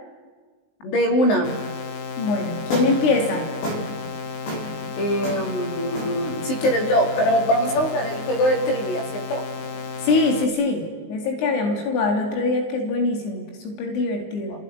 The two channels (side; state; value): right; late; 19 ms